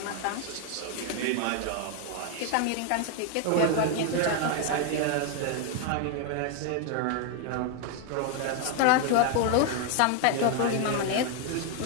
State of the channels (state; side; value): different; both; correlation 0.00